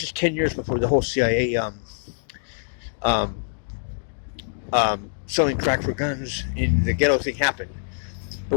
is 10 years before the whole CIA selling crack for guns in the ghetto thing happened.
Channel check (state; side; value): silent; right; digital silence